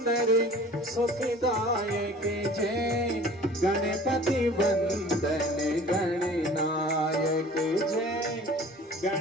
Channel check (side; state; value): both; normal; correlation 0.46